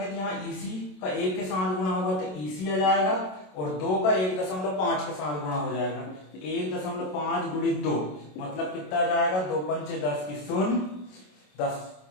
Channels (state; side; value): late; right; 27 ms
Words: तो यहाँ EC का 1 के साथ गुणा होगा तो EC आ जाएगा, और 2 का 1.5 के साथ गुणा हो जाएगा। 1.5 गुणित 2 मतलब कितना जाएगा? 2 पंचे 10 की 0, 10